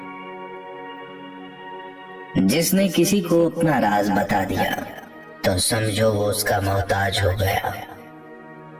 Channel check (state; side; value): identical; both; correlation 1.00